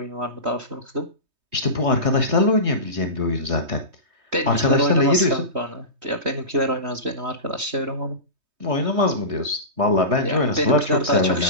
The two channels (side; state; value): left; late; 3.2 ms